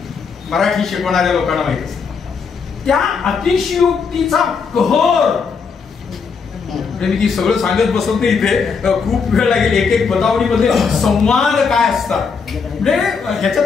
मराठी शिकवणाऱ्या लोकांना माहित असतं. त्या अतिशयोक्तीचा कहर म्हणजे मी ती सगळं सांगत बसत नाही इथे, खूप वेळ लागेल. एक एक बतावणीमध्ये संवाद काय असतात म्हणजे ह्याच्यात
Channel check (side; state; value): right; quieter; 5.5 dB